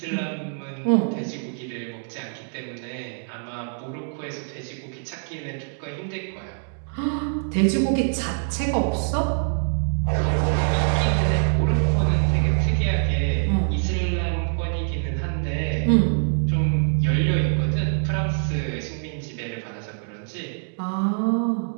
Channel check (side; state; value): left; silent; 59 dB below the other